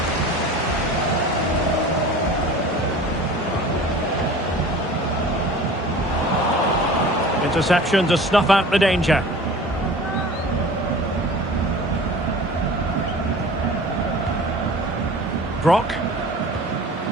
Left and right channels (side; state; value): both; normal; correlation 0.41